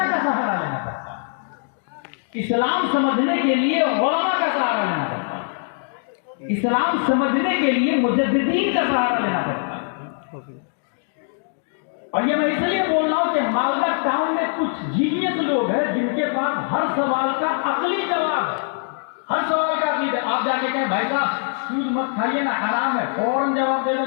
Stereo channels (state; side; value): silent; right; 64 dB below the other